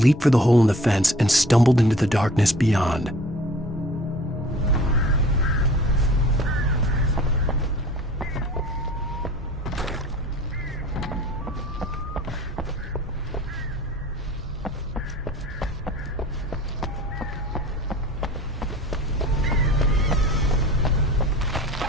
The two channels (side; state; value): both; normal; correlation 0.47